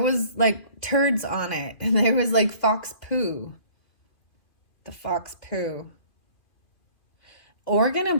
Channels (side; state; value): right; late; 2.4 ms